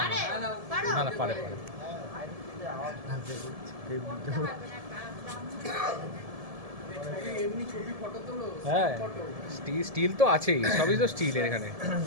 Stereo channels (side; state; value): left; late; 1.7 ms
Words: না না পারে পারে। হ্যাঁ, স্টিল তো আছেই, সবই তো স্টিলের এখানে।